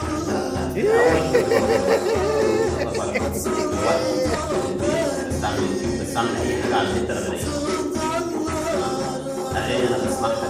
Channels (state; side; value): identical; both; correlation 1.00